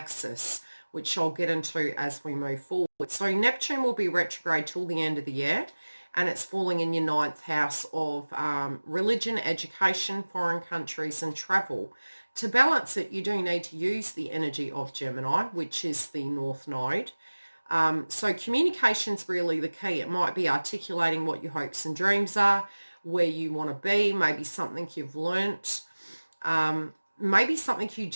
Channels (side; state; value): both; inverted; correlation -1.00